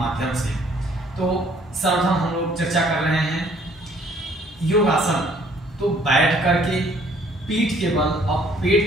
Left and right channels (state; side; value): normal; both; correlation 0.60